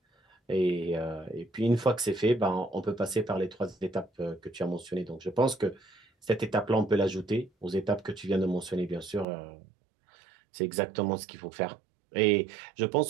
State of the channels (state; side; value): drops out; left; at 9.2 s